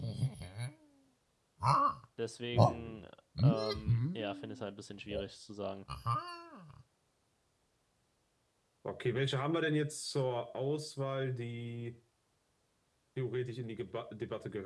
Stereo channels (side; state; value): both; identical; correlation 1.00